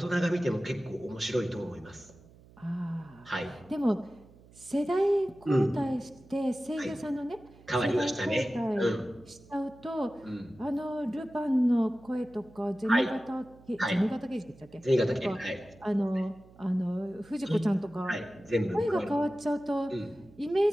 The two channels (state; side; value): noise; right; hum, 24 dB below the sound